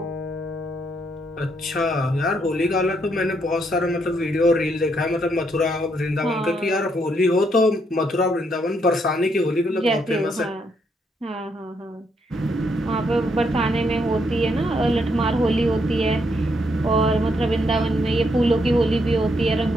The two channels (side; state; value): both; normal; correlation 0.75